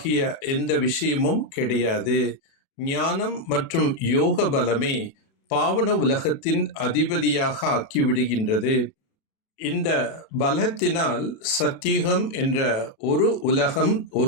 எந்த விஷயமும் கிடையாது. ஞானம் மற்றும் யோக பலமே பாவன உலகத்தின் அதிபதியாக ஆக்கிவிடுகின்றது. இந்த பலத்தினால் சத்தியுகம் என்ற ஒரு உலகம்,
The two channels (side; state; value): right; late; 36 ms